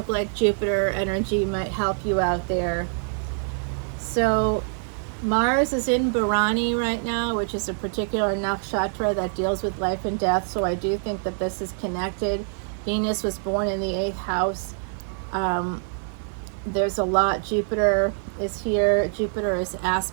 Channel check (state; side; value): silent; left; 62 dB below the other